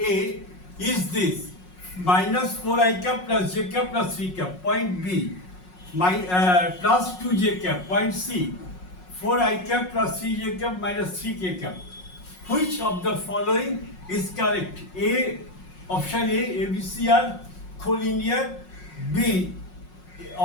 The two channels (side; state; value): right; late; 5.5 ms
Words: is this, minus 4i cap plus j cap plus 3 cap. Point B, plus 2j cap. Point C, 4i cap plus 3j cap minus 3k cap. Which of the following is correct? A, option A, ABC are collinear. B,